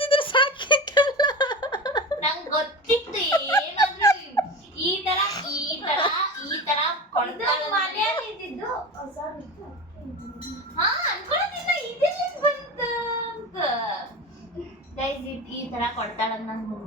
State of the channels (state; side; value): normal; both; correlation 0.28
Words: ಸಾಕಿತ್ತಲ್ಲ. ನಂಗೆ ಗೊತ್ತಿತ್ತು ಏನಾದ್ರೂ ಈ ತರ ಕೊಡ್ತಾಳೆ. ಮನೆಯಲ್ಲಿ ಇದ್ದಿದ್ದು ಹೊಸದಿತ್ತು. ಹಾ ಅನ್ಕೊಳ್ಳೋದಿಲ್ಲ ಇದೆಲ್ಲ ಬಂತ ಅಂತ. ಗೈಸ್ ಈ ತರ ಕೊಡ್ತಾಳಂತ ನಂಗೆ